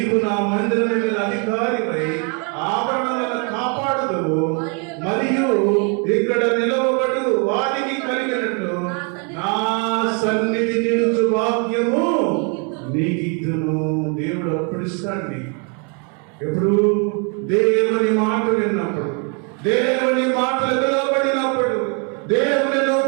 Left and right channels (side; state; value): left; quieter; 36.6 dB